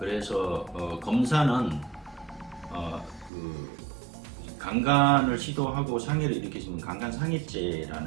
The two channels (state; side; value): drops out; left; at 3.3 s